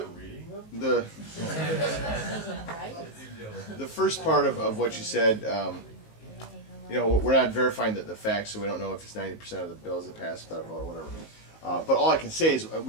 reading them? The first part of what you said, you know, we're not verifying the facts, so we don't know if it's 90% of the bills that pass without a vote or whatever. But all I can say is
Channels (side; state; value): right; late; 19 ms